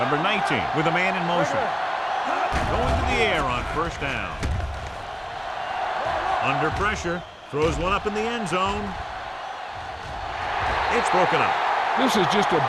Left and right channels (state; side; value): identical; both; correlation 1.00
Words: 19 with a man in motion. Going to the air on first down. Under pressure. Throws one up in the end zone. It's broken up. This is just a